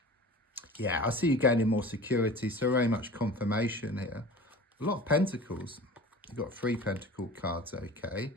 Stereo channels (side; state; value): both; normal; correlation 0.39